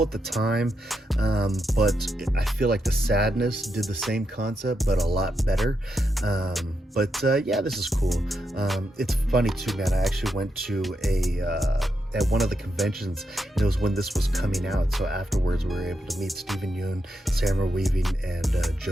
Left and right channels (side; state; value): both; normal; correlation 0.84